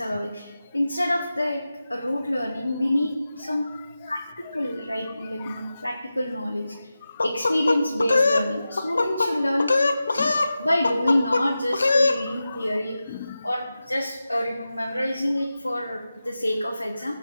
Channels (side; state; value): both; inverted; correlation -0.93